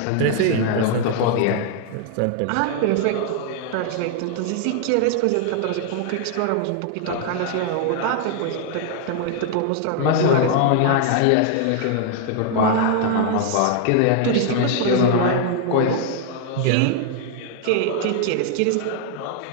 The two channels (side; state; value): both; different; correlation 0.00